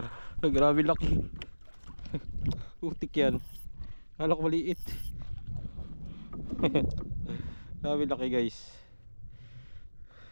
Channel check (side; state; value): both; inverted; correlation -1.00